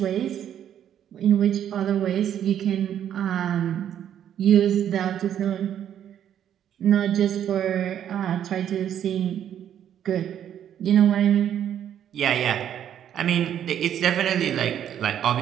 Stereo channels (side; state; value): left; quieter; 10.0 dB